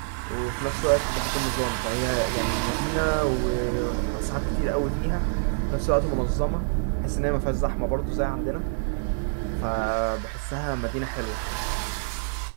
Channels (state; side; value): silent; left; digital silence